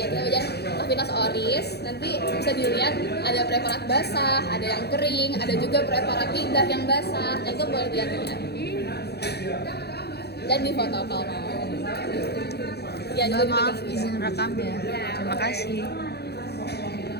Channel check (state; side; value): late; right; 0.48 ms